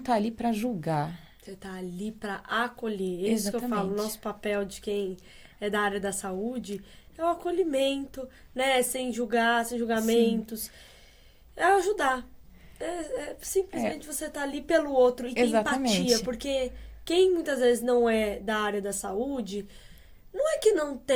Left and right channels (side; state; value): both; identical; correlation 1.00